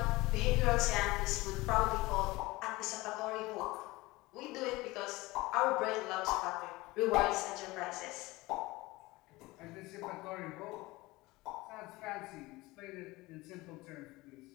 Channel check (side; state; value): right; quieter; 20.9 dB